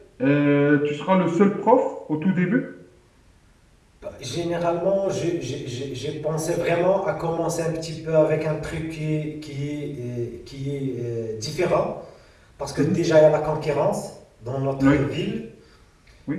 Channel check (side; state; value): both; identical; correlation 1.00